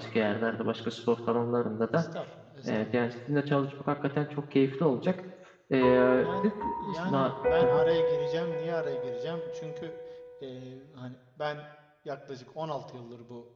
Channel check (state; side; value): identical; both; correlation 1.00